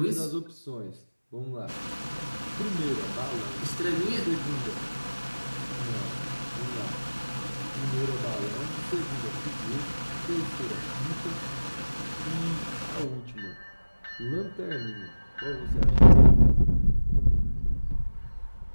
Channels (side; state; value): both; inverted; correlation -1.00